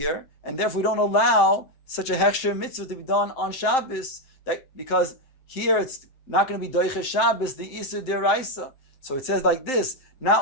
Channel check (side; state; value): right; late; 7.6 ms